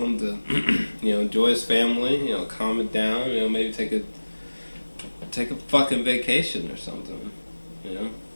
to, enjoy his family, calm it down, maybe take a fucking vacation or something,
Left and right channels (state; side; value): inverted; both; correlation -1.00